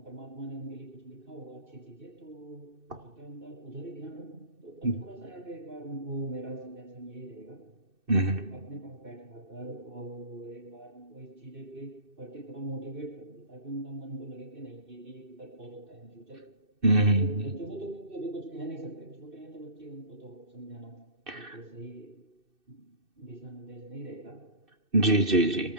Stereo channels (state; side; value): late; left; 2.6 ms